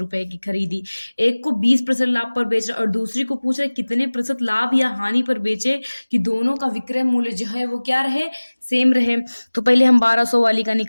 की खरीदी। एक को 20% लाभ पर बेच रहा और दूसरी को पूछ रहा है कितने प्रतिशत लाभ या हानि पर बेचे कि दोनों का विक्रय मूल्य जो है वो क्या रहे, सेम रहे। तो पहले हम 1200 वाली का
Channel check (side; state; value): both; inverted; correlation -1.00